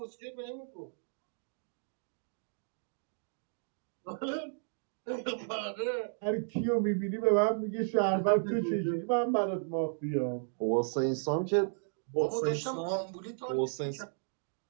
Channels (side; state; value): left; silent; digital silence